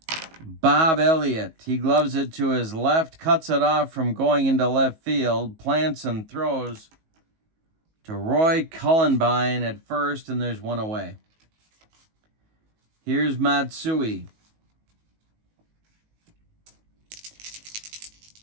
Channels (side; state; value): left; late; 19 ms